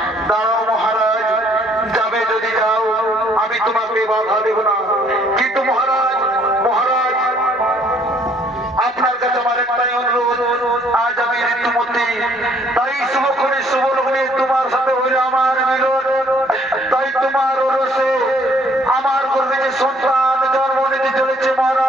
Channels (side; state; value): both; normal; correlation 0.63